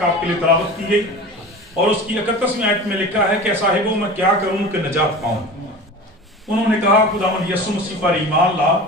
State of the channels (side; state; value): both; normal; correlation 0.34